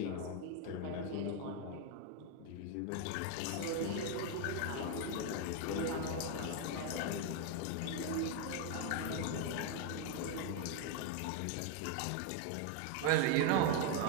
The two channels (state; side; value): different; both; correlation 0.01